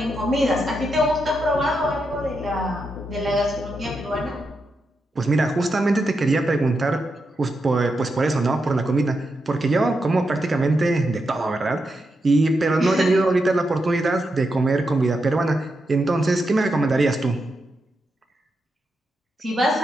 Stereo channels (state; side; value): normal; both; correlation 0.85